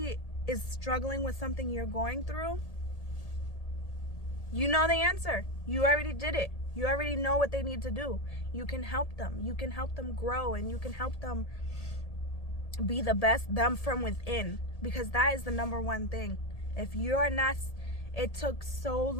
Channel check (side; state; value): right; late; 1.8 ms